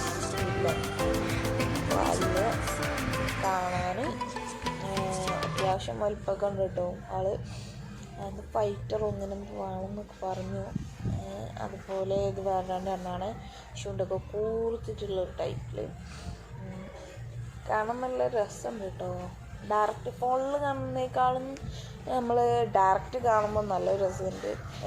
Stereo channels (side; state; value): both; identical; correlation 1.00